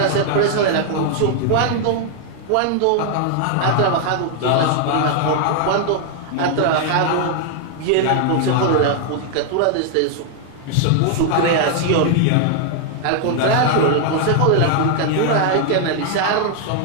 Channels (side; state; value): both; different; correlation 0.00